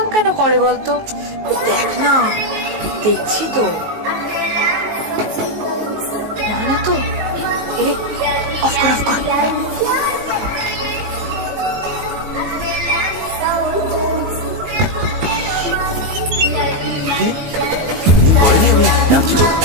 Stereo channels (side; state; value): left; late; 19 ms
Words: কেন করে বলতো? দেখ না, দেখছি তো। মানা তো এরে, অফ কর অফ কর। বলেনি আমি ডাকছি তো।